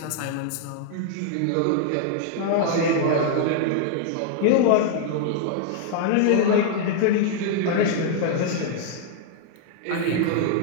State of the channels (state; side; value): different; both; correlation -0.01